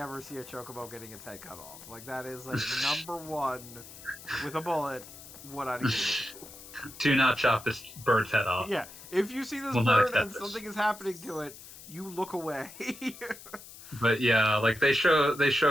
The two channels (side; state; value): left; noise; hiss, 16 dB below the sound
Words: see a chocobo getting its head cut off. Like, that is, like, number one, with a bullet, what I do. Do not chop this bird's head off. Yeah, if you see this bird and something is happening to it, you look away. But yeah, like, they showed